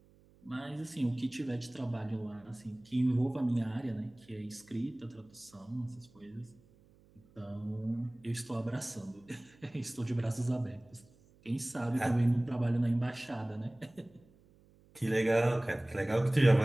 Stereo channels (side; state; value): right; noise; hum, 28 dB below the sound